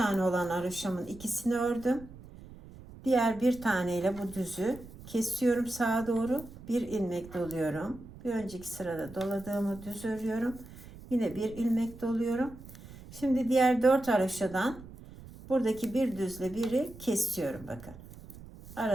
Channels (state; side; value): noise; right; rumble, 17 dB below the sound